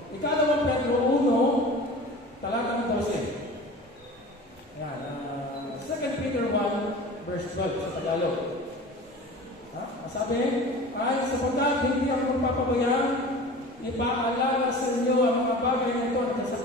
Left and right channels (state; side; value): normal; both; correlation 0.38